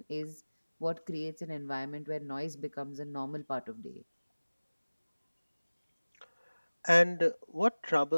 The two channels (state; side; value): inverted; both; correlation -1.00